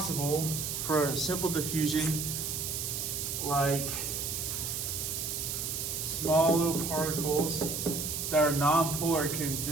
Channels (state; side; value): noise; right; hiss, 3 dB below the sound